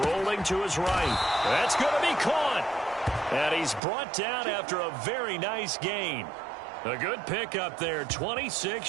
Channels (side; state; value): left; drops out; at 3.8 s